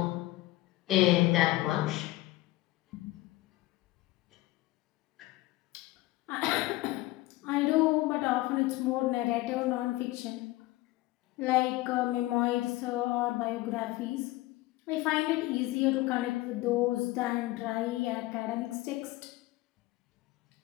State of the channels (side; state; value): right; quieter; 18.7 dB